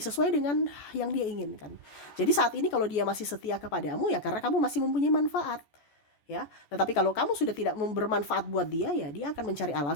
sesuai dengan yang dia inginkan. Jadi saat ini kalau dia masih setia kepadamu ya karena kamu masih mempunyai manfaat ya. Tetapi kalau kamu sudah tidak bermanfaat buat dia, ya dia akan mencari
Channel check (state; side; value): late; right; 14 ms